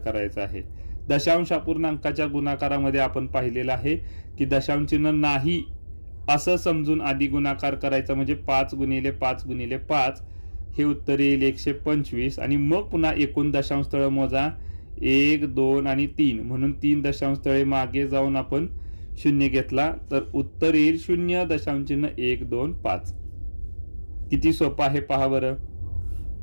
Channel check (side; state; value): both; inverted; correlation -1.00